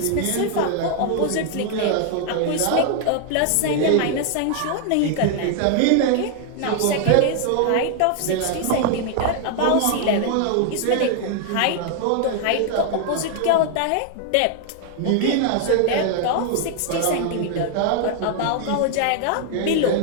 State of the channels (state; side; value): different; both; correlation 0.00